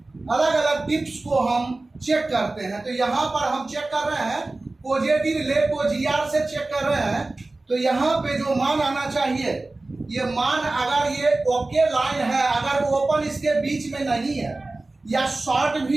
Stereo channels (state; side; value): quieter; left; 3.1 dB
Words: अलग अलग टिप्स को हम चेक करते हैं। तो यहाँ पर हम चेक कर रहे हैं पॉजिटिव लेग को GR से चेक कर रहे हैं। तो यहाँ पे जो मान आना चाहिए, ये मान अगर ये ओके लाइन है, अगर ओपन इसके बीच में नहीं है या शॉर्ट